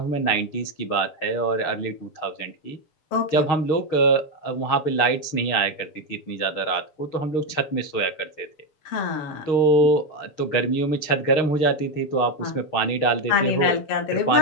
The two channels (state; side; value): late; right; 6.5 ms